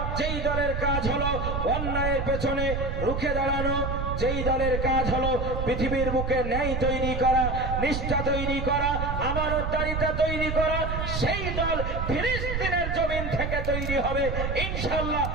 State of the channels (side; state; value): right; noise; rumble, 2 dB below the sound